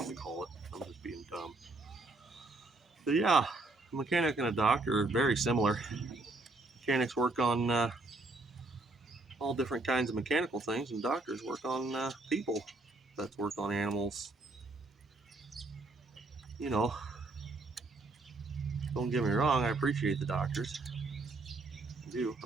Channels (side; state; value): left; quieter; 3.1 dB